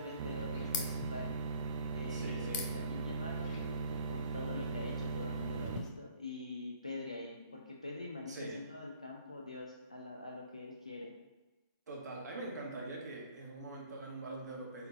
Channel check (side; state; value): both; inverted; correlation -0.58